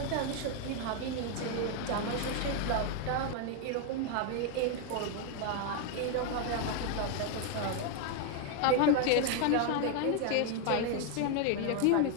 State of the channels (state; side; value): different; both; correlation 0.01